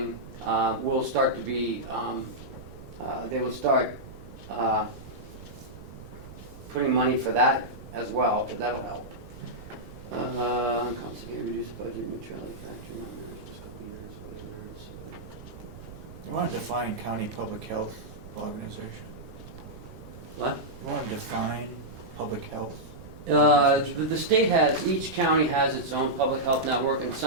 will start to be. They will start putting money for that as well, but that'll help. Constantly reduce budget neutrality factor, not managed this couple years, you wanna define county public health organization? What? You wanna define public health The state has, each county has its own public health network, and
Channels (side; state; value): right; noise; rumble, 15 dB below the sound